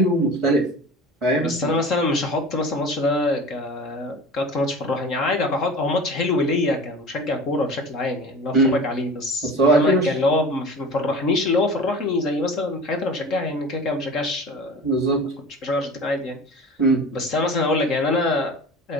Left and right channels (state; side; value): normal; both; correlation 0.36